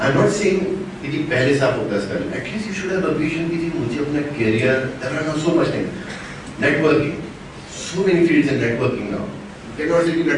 not saying kitty pehle sa focus kar. At least you should have a vision kitty mujhe apna career. There are now so much things. Networking. So many fields in networking now. You cannot say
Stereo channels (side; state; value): both; identical; correlation 1.00